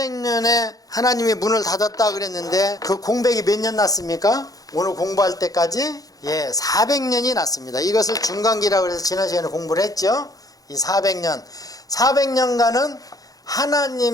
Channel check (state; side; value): late; right; 0.18 ms